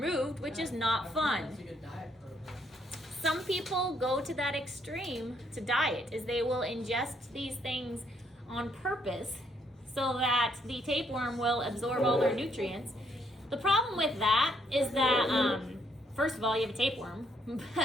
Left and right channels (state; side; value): normal; both; correlation 0.71